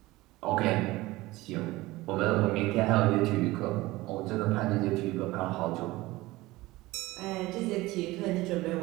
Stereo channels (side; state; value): left; quieter; 19.3 dB